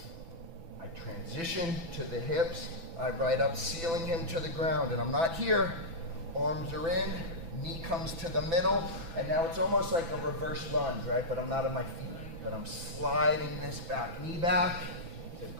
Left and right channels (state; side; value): late; left; 6.0 ms